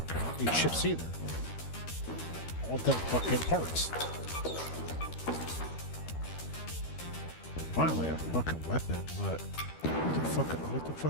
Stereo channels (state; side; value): late; right; 13 ms